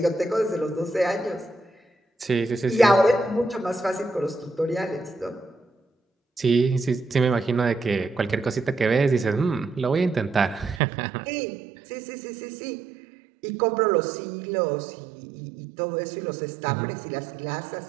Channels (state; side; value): drops out; left; at 10.8 s